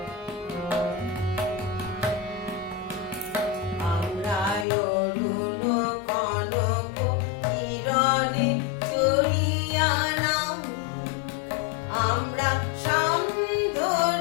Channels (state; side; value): drops out; right; at 4.7 s